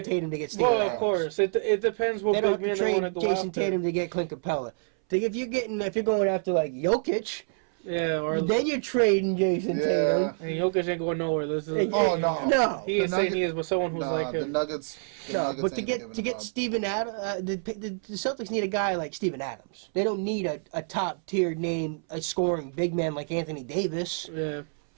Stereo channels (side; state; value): left; silent; 60 dB below the other